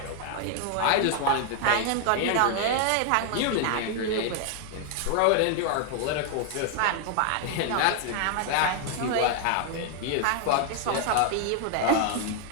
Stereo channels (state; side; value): different; both; correlation 0.00